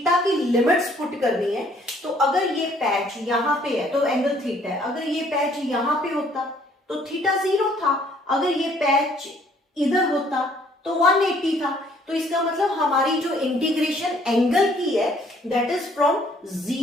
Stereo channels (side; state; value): both; normal; correlation 0.62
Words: की लिमिट्स पुट करनी है। तो अगर ये पैच यहां पे है तो एंगल थीटा है, अगर ये पैच यहां पे होता तो थीटा 0 था, अगर ये पैच इधर होता तो 180 था। तो इसका मतलब हमारी जो इंटीग्रेशन एंगल की है दैट इज फ्रॉम